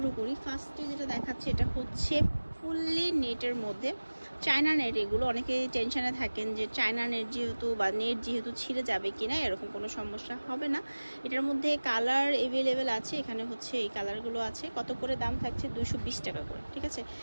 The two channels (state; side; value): inverted; both; correlation -1.00